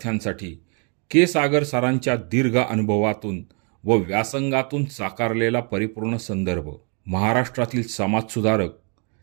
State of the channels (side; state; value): left; quieter; 37.5 dB